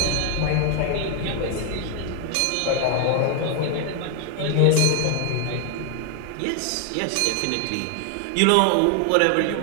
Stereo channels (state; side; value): different; both; correlation 0.00